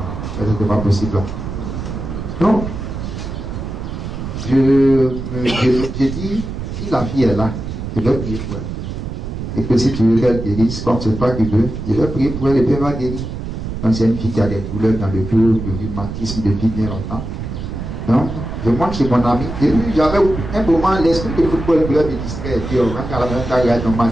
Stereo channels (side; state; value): right; noise; rumble, 6 dB below the sound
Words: Ça, c'était pas possible. Donc, j'ai dit, si la fille est là, je vais prier pour elle. Et que si tu veux qu'elle guérisse, comme c'est toi qui veux, je vais prier pour elle et puis elle va guérir. Donc c'est une fille qui a des douleurs dans le dos, du rhumatisme depuis bien longtemps. Donc, je monte chez mon ami. Et puis j'avais un moment, l'esprit de football me distrait. Et puis on rentre à la même temps, regarde un